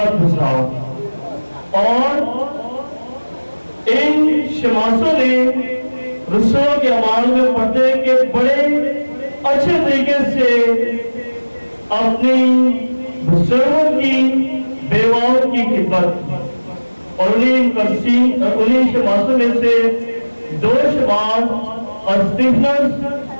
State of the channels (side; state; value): both; inverted; correlation -1.00